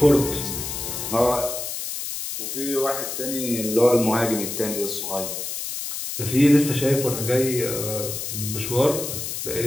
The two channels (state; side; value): noise; left; hiss, 5 dB below the sound